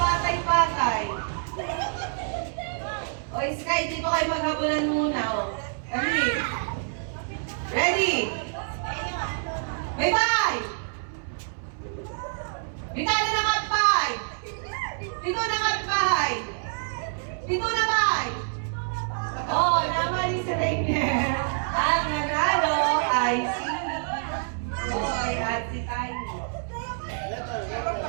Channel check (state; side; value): silent; left; 60 dB below the other